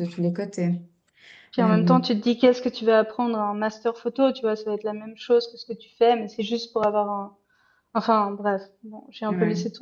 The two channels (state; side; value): identical; both; correlation 1.00